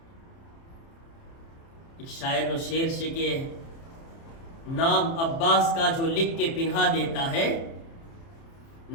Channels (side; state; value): right; late; 30 ms